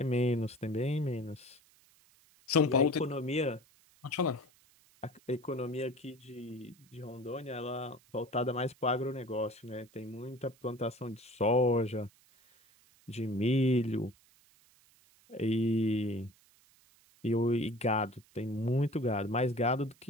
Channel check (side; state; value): right; noise; hiss, 30 dB below the sound